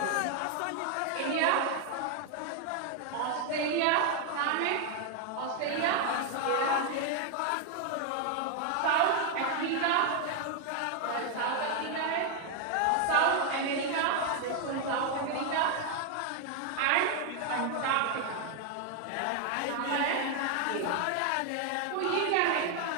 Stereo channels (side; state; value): both; different; correlation 0.00